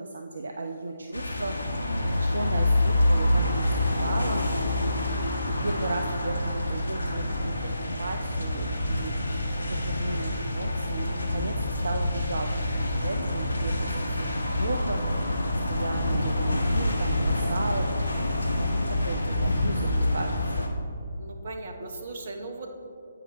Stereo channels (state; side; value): inverted; both; correlation -0.83